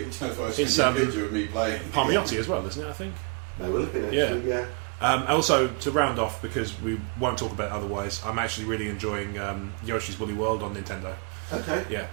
That's why I sent you a picture of me playing. Palmiotti as well, isn't it? I think. They will have been actually. Yeah. Also, to round off, because we won't talk about it otherwise, I'm actually really enjoying Yoshi's Woolly World on Nintendo. Okay. Yeah,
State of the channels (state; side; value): quieter; left; 33.1 dB